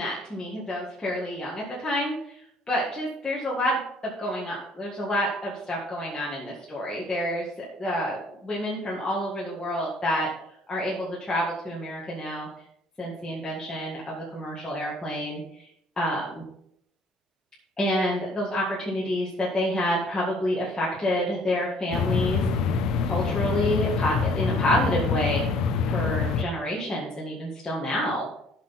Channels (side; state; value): both; normal; correlation 0.58